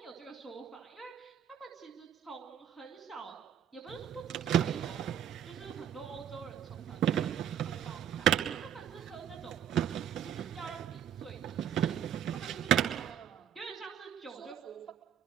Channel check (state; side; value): quieter; left; 9.3 dB